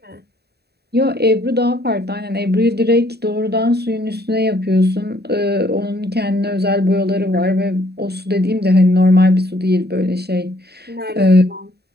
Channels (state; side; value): late; left; 0.47 ms